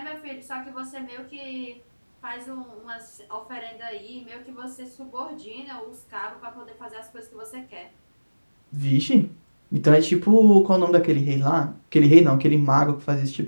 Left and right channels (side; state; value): both; inverted; correlation -1.00